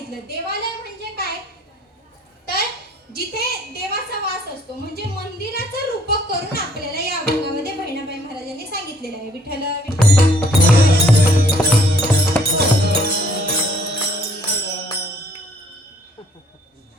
देवालय म्हणजे काय? तर जिथे देवाचा वास असतो, म्हणजे मंदिराचं रूपक करून आपल्याला या अभंगामध्ये बहिणाबाई महाराजांनी सांगितलेलं आहे. विठ्ठल विठ्ठल.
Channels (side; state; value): both; normal; correlation 0.62